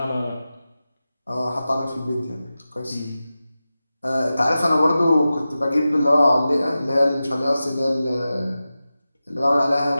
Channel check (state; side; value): inverted; both; correlation -0.94